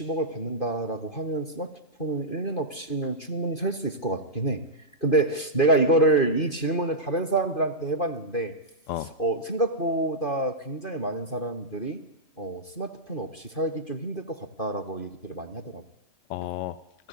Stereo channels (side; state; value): right; late; 2.5 ms